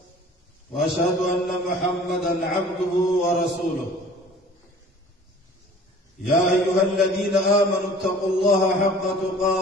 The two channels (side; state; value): both; normal; correlation 0.47